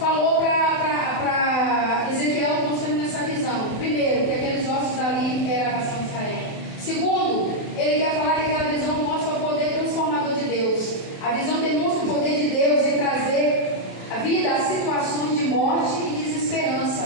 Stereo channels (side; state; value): right; late; 27 ms